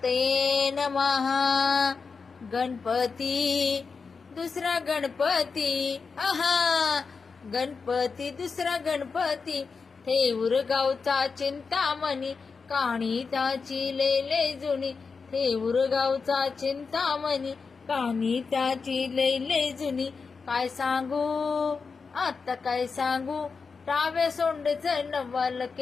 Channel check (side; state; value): right; quieter; 5.0 dB